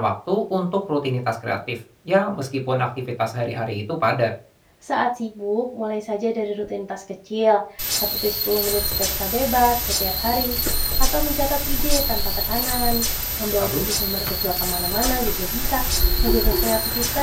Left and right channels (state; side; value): identical; both; correlation 1.00